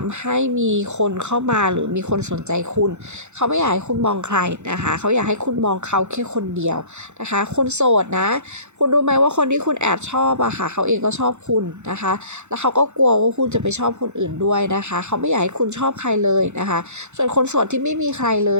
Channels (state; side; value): late; left; 0.83 ms